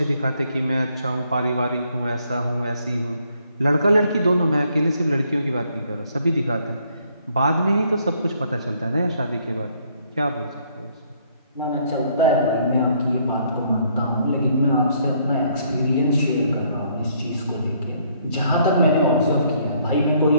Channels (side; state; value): both; inverted; correlation -0.67